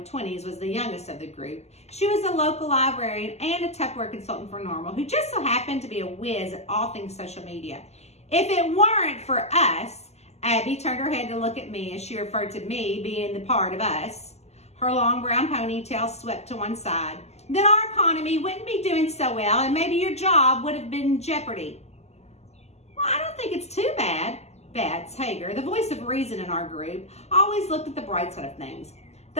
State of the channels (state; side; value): late; right; 0.31 ms